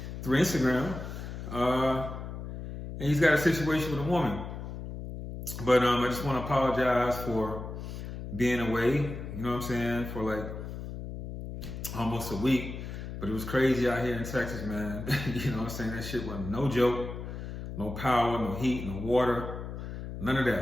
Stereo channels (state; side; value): noise; left; hum, 8 dB below the sound